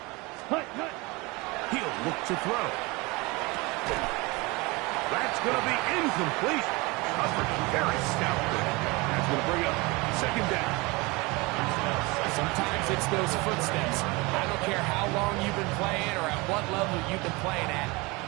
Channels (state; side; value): quieter; left; 24.9 dB